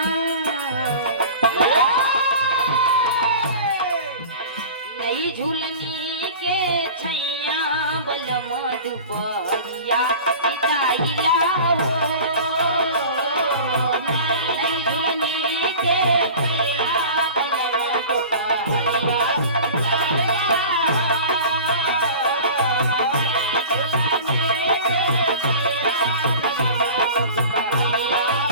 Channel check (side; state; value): both; inverted; correlation -0.38